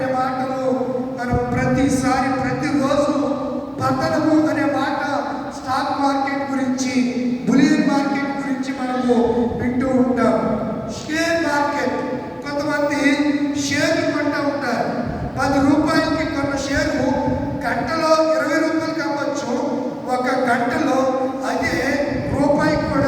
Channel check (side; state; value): both; identical; correlation 1.00